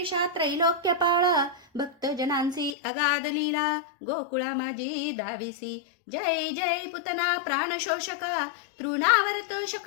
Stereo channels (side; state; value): right; drops out; at 2.8 s